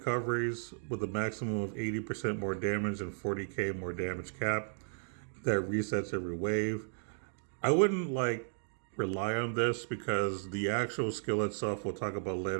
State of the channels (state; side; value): silent; left; digital silence